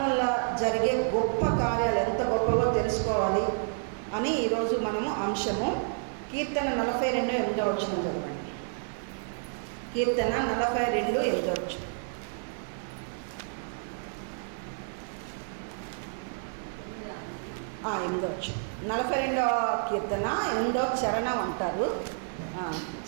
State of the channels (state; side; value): silent; left; digital silence